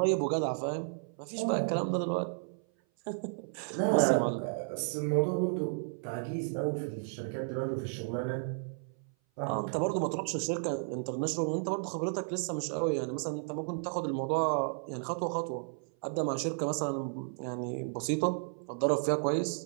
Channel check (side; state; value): left; silent; 56 dB below the other